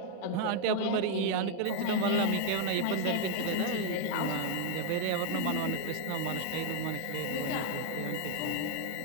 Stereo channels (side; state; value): both; different; correlation 0.00